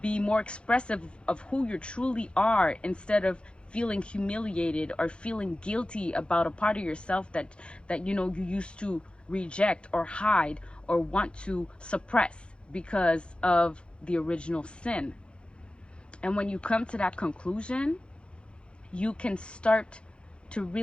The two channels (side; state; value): right; late; 0.057 ms